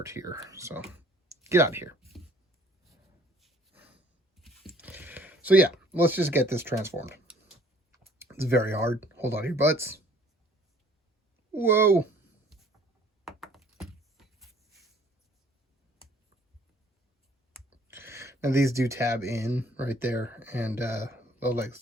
here, so get out of here. So yeah, let's just get this transformed. It's very hard. Hold on to your butts. Whoa. And these do tab in right there, and the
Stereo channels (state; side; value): normal; both; correlation 0.56